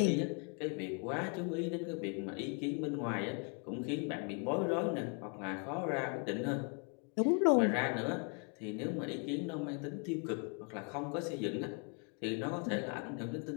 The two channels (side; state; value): right; quieter; 37.2 dB